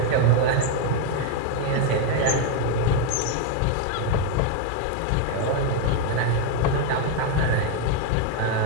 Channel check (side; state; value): both; different; correlation 0.01